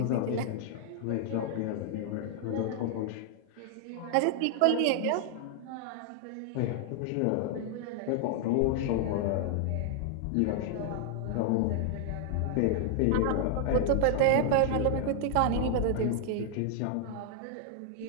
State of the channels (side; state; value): both; different; correlation 0.00